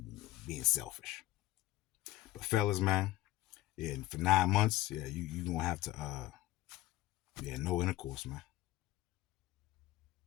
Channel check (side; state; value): right; quieter; 16.4 dB